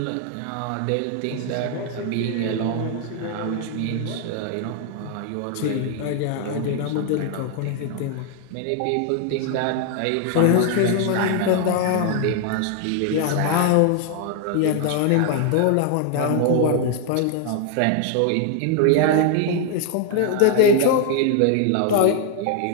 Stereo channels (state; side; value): different; both; correlation 0.00